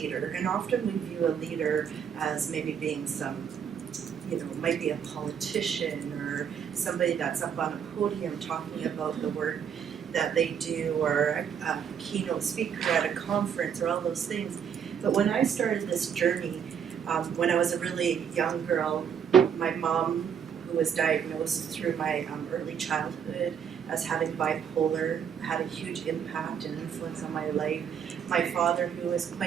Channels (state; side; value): quieter; left; 7.7 dB